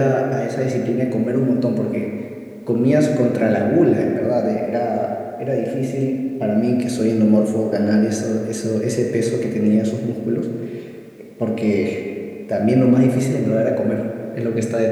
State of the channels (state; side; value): identical; both; correlation 1.00